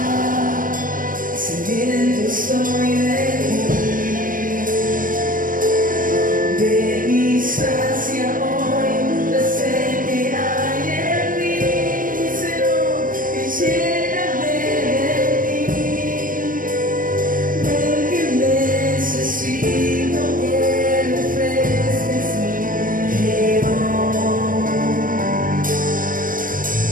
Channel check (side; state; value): left; late; 0.40 ms